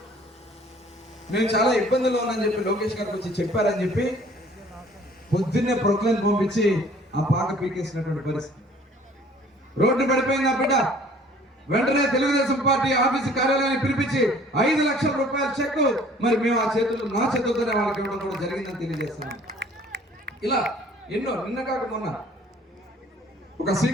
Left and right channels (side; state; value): both; normal; correlation 0.53